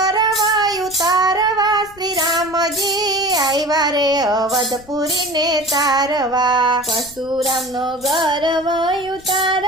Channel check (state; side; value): noise; left; rumble, 24 dB below the sound